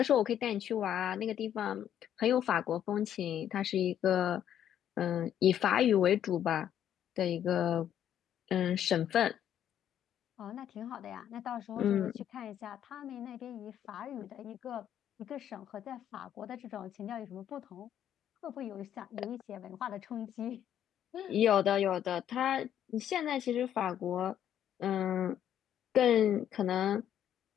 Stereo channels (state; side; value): quieter; right; 10.2 dB